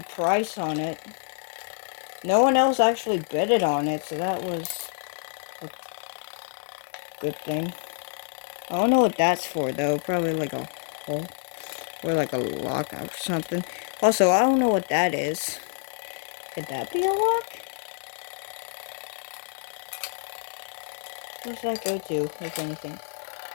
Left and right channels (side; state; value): right; silent; digital silence